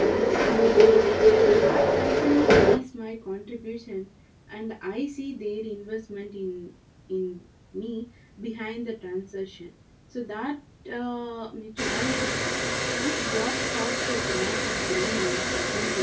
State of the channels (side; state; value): both; identical; correlation 1.00